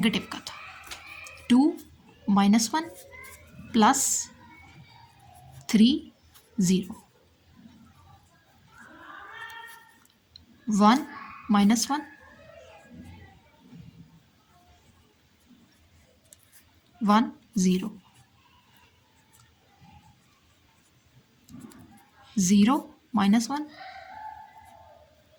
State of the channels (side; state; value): both; identical; correlation 1.00